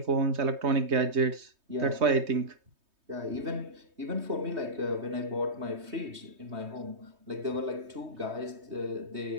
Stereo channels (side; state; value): left; late; 3.2 ms